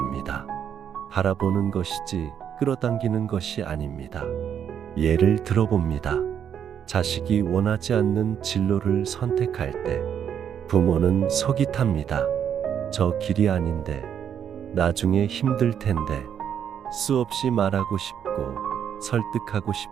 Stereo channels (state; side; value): quieter; left; 8.6 dB